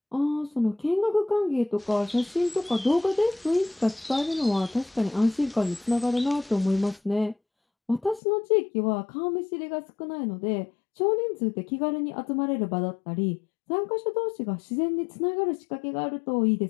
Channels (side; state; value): right; drops out; at 8.2 s